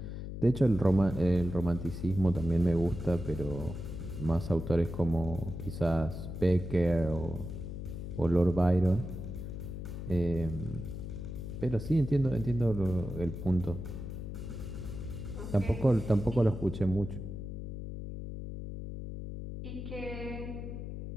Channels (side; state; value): left; noise; hum, 7 dB below the sound